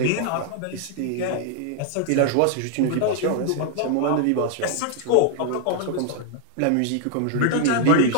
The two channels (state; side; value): different; both; correlation 0.00